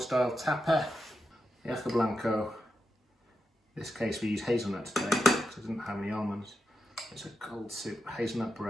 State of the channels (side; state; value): both; normal; correlation 0.88